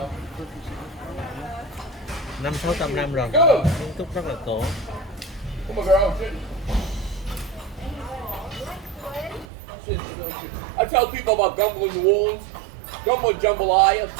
500-600 năm rồi, kiến trúc rất là cổ. Come on, girl. I tell people about gumbo in New Orleans. Gumbo and jambalaya,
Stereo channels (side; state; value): left; drops out; at 9.5 s